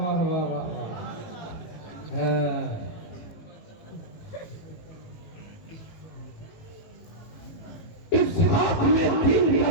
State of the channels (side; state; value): right; late; 19 ms